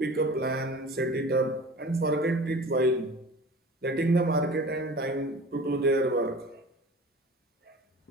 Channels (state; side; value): normal; both; correlation 0.40